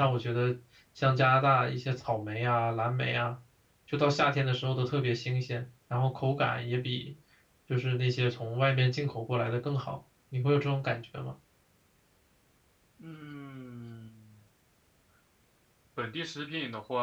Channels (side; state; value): both; identical; correlation 1.00